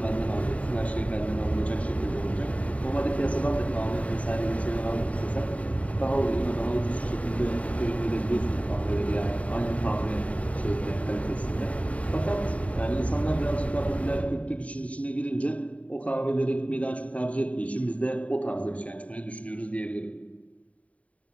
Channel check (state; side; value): late; right; 0.067 ms